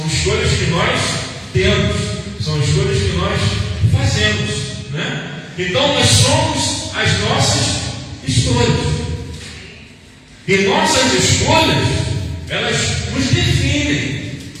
escolhas que nós temos, são escolhas que nós fazemos, né? Então nós somos as nossas escolhas. E nossas escolhas, elas nos definem.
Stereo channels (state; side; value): identical; both; correlation 1.00